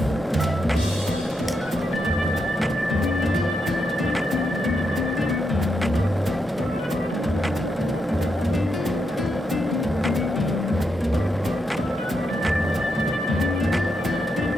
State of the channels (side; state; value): both; normal; correlation 0.83